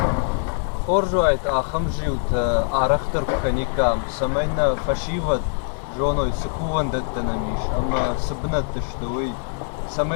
Хоржуайт ахамжиут арахтар каникам самайна фашиват жоной сыкуван даттанамиш, ама сыбнат тыштовый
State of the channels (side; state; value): right; silent; digital silence